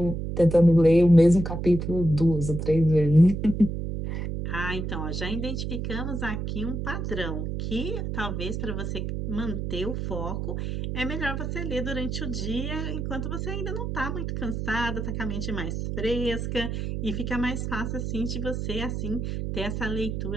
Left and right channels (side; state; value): right; noise; hum, 3 dB below the sound